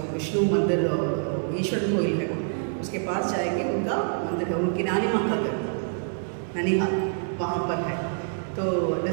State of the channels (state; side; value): silent; left; 61 dB below the other